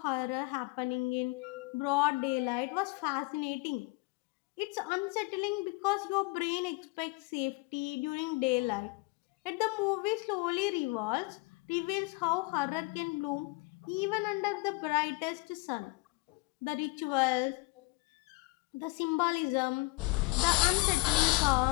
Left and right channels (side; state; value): right; quieter; 24.7 dB